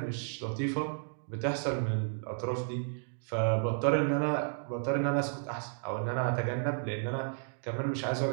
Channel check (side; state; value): left; silent; digital silence